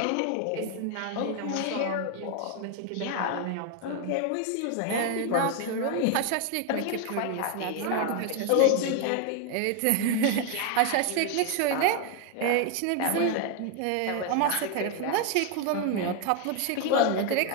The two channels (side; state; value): both; different; correlation 0.01